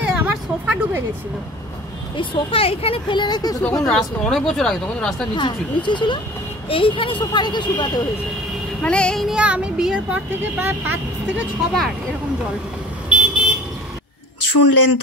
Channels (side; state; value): both; normal; correlation 0.43